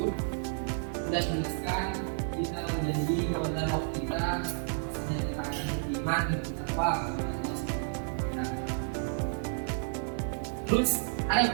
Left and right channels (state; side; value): silent; left; digital silence